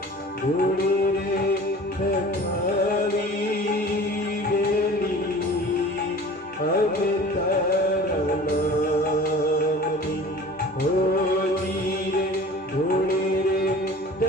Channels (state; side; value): normal; both; correlation 0.42